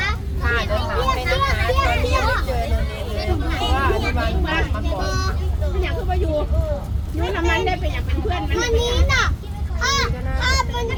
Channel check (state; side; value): identical; both; correlation 1.00